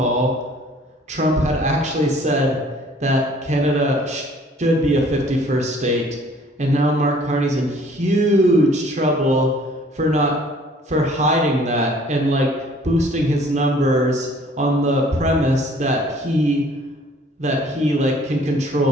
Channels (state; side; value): normal; both; correlation 0.56